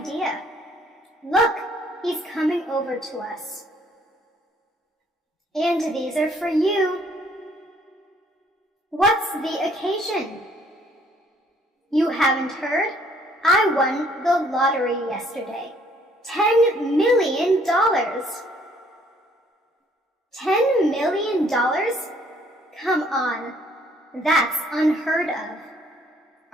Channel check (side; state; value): both; normal; correlation 0.63